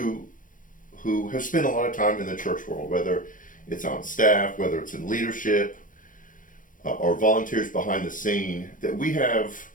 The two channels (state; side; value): late; right; 0.39 ms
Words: have spent a lot of time in the church world, whether it's on staff, whether it's in leadership, or volunteers behind the scene, that we have